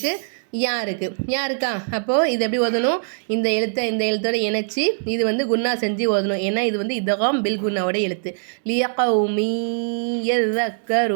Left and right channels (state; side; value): silent; left; digital silence